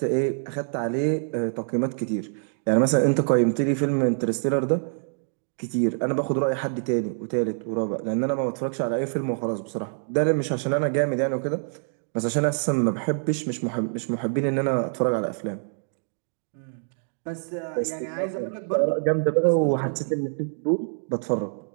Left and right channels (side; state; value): left; silent; digital silence